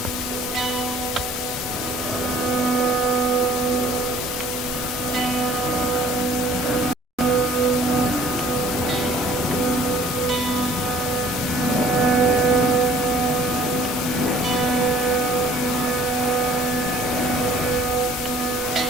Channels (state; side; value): normal; both; correlation 0.54